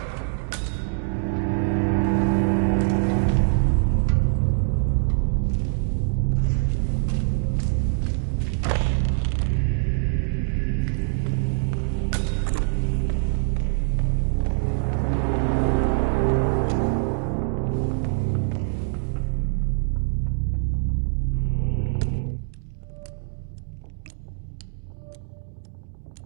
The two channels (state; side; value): silent; left; digital silence